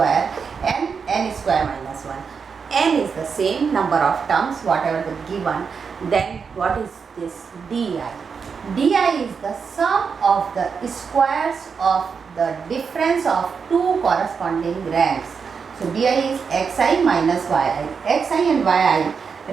n square minus 1. N is the same number of terms whatever the given. Then what is this di? Di is the sum of the squares of the difference of two corresponding ranks. So di is xi minus yi. Xi and yi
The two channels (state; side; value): quieter; left; 5.9 dB